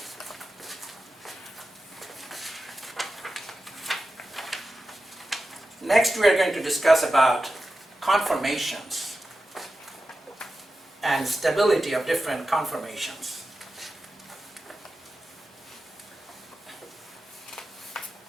Next we are going to discuss about conformations and stability of different conformations.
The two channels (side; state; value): both; normal; correlation 0.92